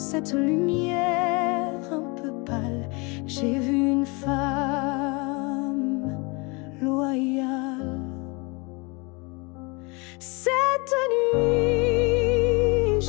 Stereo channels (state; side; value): quieter; right; 28.8 dB